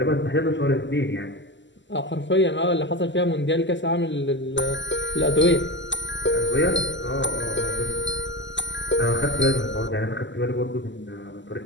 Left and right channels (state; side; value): late; right; 0.54 ms